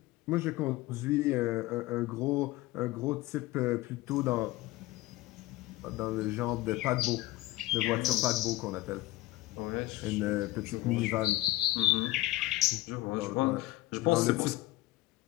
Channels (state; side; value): quieter; right; 17.5 dB